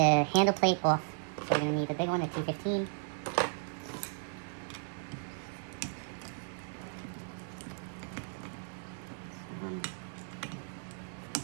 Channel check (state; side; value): silent; left; 54 dB below the other